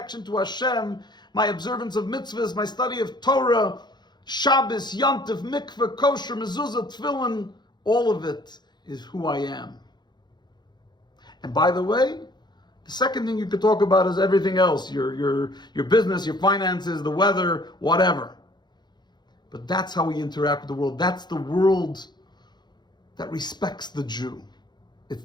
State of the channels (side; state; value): right; late; 0.21 ms